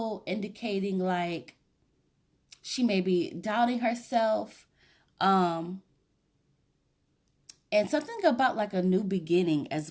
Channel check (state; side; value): identical; both; correlation 1.00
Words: indicating like she may be doubting herself. And something about like a new beginning